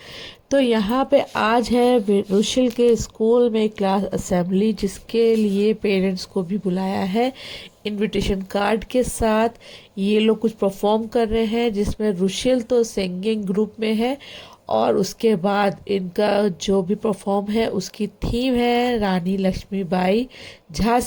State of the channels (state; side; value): identical; both; correlation 1.00